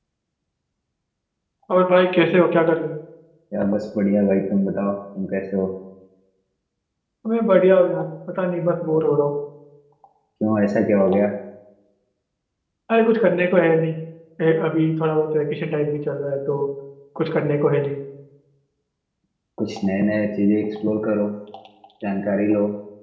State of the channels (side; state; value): both; identical; correlation 1.00